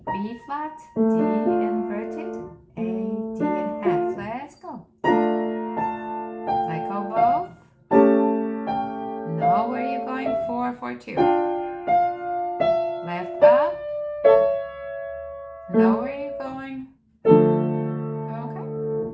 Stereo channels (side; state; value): both; identical; correlation 1.00